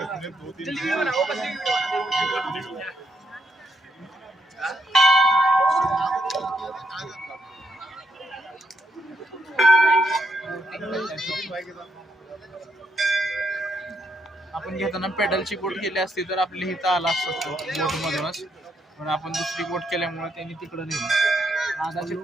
आपण घेताना पेडलची बोट केली असती तर आपली इथं आला असतो बोट मधूनच, पण आपण दुसरी बोट केल्यामुळे त्यांनी तिकडे नेलं. आधा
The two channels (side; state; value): both; normal; correlation 0.77